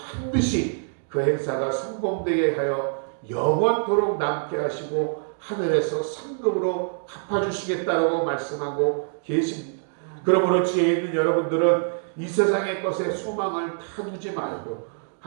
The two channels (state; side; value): silent; left; digital silence